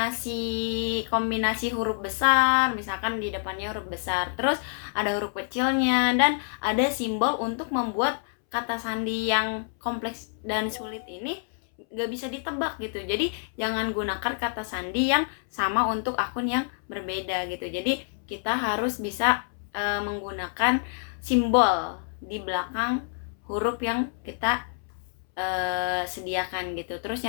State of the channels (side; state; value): right; silent; 60 dB below the other